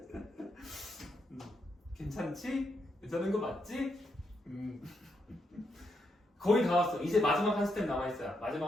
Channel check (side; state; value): both; normal; correlation 0.80